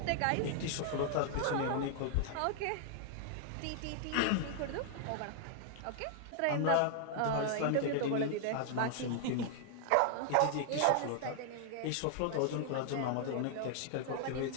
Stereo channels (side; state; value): both; different; correlation 0.00